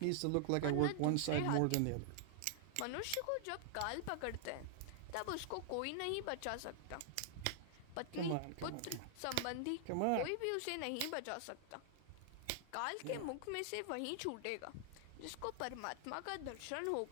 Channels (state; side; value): different; both; correlation 0.00